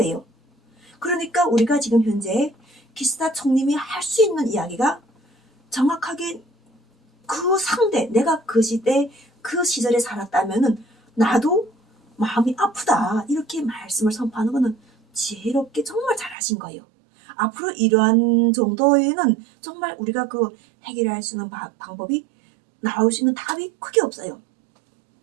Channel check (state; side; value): drops out; left; at 16.4 s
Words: 그러니까 우리가 지금 현재 기시다 총님이 할 수 있는 이야기가 정확하게 그 상대, 내가 그 시대 그 시절에 살았다면은 나도 마음이 아프다 이렇게 말씀을 선포하는 거는 지혜롭게 정말 잘하신 거예요. 앞으로 이러한 정도에는 정말 우리가 그 해결할 수 있는 방법이, 나올 수 있는 답이 크게 없어요.